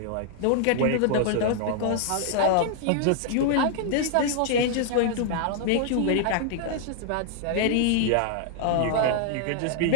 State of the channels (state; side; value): different; both; correlation 0.00